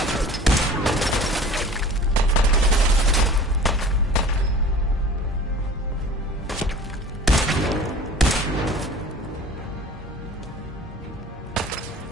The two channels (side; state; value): both; normal; correlation 0.43